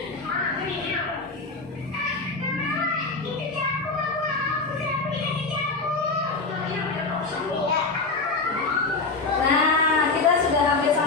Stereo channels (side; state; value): right; quieter; 3.8 dB